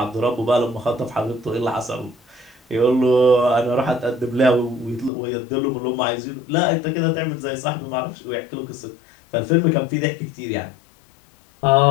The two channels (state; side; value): drops out; right; at 5.1 s